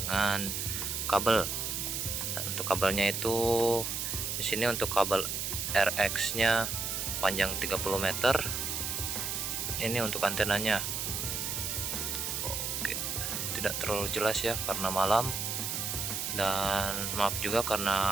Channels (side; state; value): right; noise; hiss, 2 dB below the sound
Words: kabel. Dan untuk kabelnya itu di sini untuk kabel RX nya panjang 30 meter. Ini untuk antenanya. Oke, tidak terlalu jelas ya karena malam, dan maaf juga karena